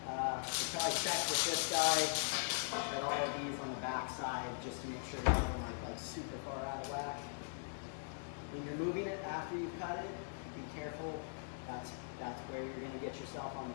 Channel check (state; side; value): silent; right; digital silence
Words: we'll probably check with this guy at all of these on the back side just to make sure none of them are like super far out of whack. When you're moving it after you've cut it, be careful. That's where you're going to get yourself on